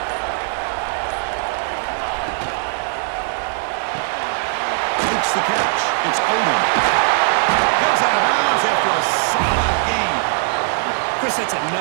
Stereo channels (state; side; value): silent; left; digital silence